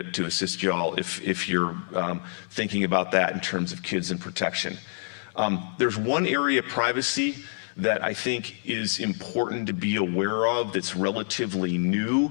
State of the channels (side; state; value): right; silent; digital silence